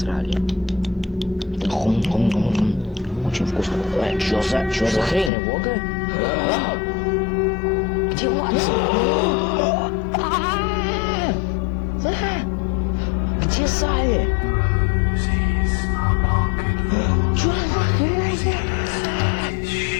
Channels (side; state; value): right; drops out; at 5.3 s